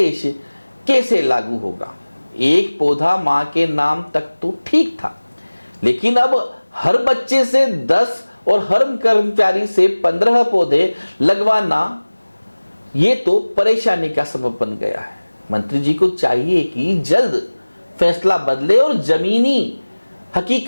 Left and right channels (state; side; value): inverted; both; correlation -1.00